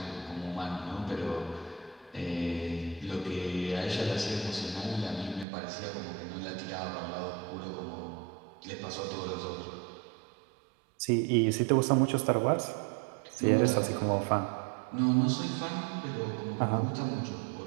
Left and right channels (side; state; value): left; drops out; at 5.5 s